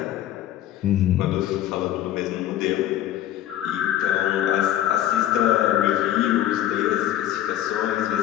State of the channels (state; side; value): quieter; right; 12.4 dB